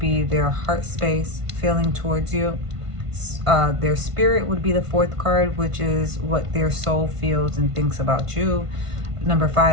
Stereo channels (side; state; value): left; late; 1.5 ms